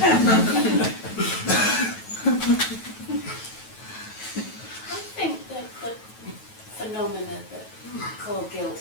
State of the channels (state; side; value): late; right; 9.2 ms